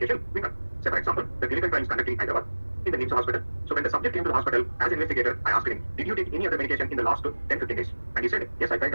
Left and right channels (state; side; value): inverted; both; correlation -1.00